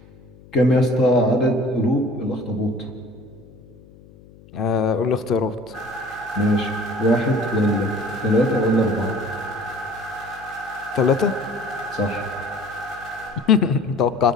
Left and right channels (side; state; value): left; noise; hum, 23 dB below the sound